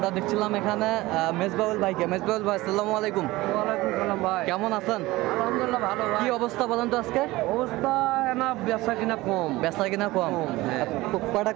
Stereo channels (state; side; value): quieter; left; 19.2 dB